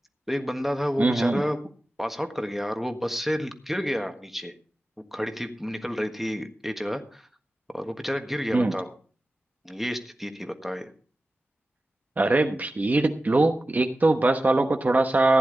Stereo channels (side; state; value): both; normal; correlation 0.94